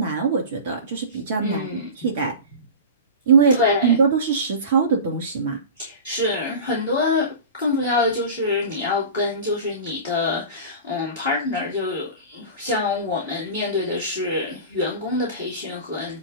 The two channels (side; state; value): both; inverted; correlation -0.32